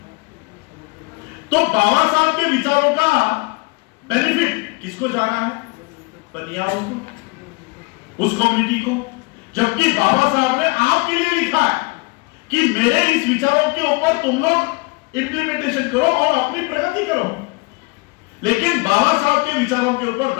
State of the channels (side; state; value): right; quieter; 28.1 dB